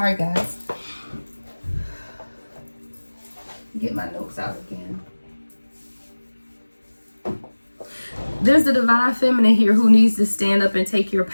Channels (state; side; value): inverted; both; correlation -1.00